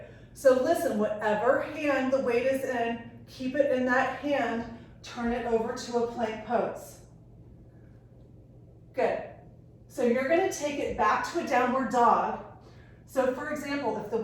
So listen, whatever hand the weight is in, keep it in that hand, turn it over to a plank pose. Good. So you're going to take it back to a downward dog. So for example, if the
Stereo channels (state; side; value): identical; both; correlation 1.00